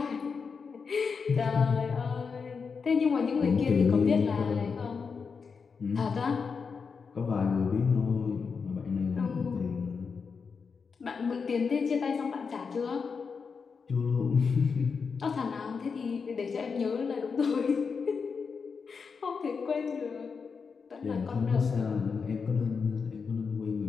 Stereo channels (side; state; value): right; quieter; 5.5 dB